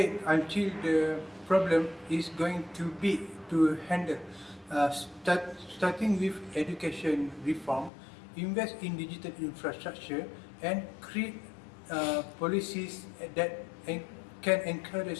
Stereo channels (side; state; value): right; drops out; at 7.9 s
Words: until the problem is going too big to handle. Starting with education reform, invest in digital infrastructure, and create policies that can